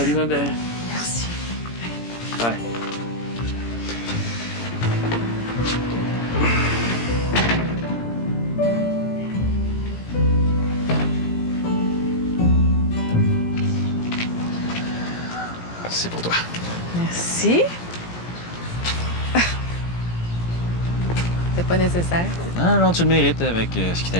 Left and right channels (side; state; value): right; late; 17 ms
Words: ma belle. Merci. Bye. C'est pour toi. Merci. C'était pas nécessaire. Non, non, tu le mérites avec ce qui